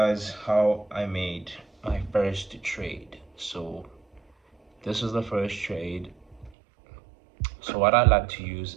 how I made my first trade. So this is the first trade. So what I like to use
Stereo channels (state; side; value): drops out; left; at 6.5 s